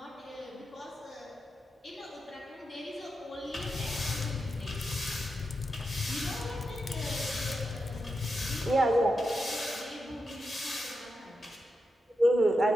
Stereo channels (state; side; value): normal; both; correlation 0.87